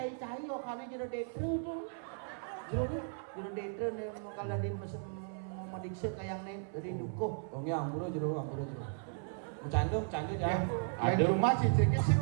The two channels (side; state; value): left; silent; 54 dB below the other